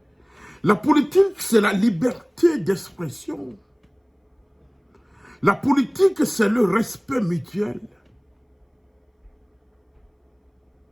La politique, c'est la liberté d'expression. La politique, c'est le respect mutuel.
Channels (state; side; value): identical; both; correlation 1.00